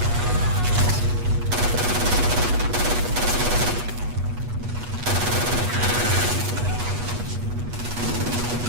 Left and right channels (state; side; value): late; left; 8.2 ms